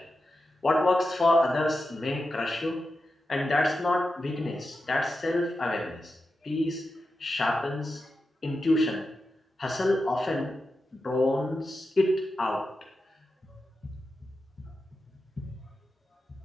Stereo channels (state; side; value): normal; both; correlation 0.90